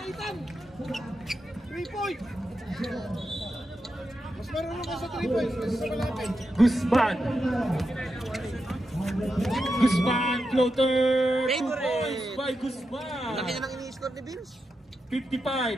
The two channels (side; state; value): both; normal; correlation 0.87